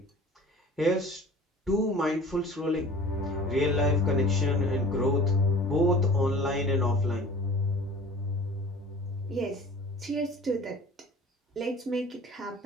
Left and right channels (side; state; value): both; normal; correlation 0.44